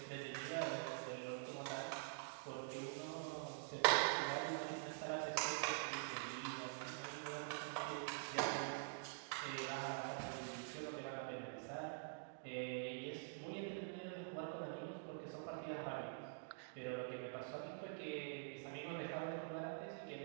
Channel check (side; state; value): left; silent; digital silence